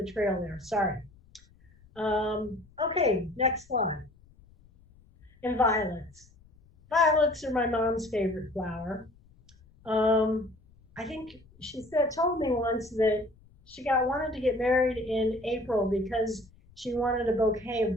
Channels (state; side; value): noise; left; rumble, 27 dB below the sound